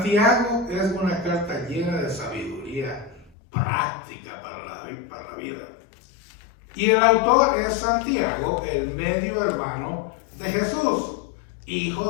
es una carta llena de sabiduría práctica para la vida. Y el autor es Santiago, el medio hermano de Jesús, hijo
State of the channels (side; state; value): right; drops out; at 3.3 s